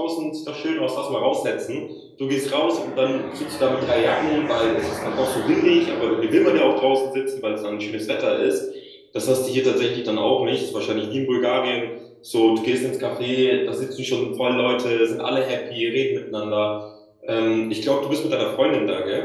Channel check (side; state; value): both; identical; correlation 1.00